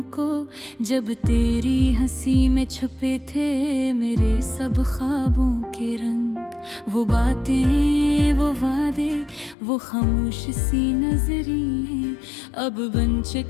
को, जब तेरी हंसी में छुपे थे मेरे सब ख्वाबों के रंग। वो बातें, वो वादे, वो खामोश सी नजरें अब बन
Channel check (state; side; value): drops out; right; at 9.6 s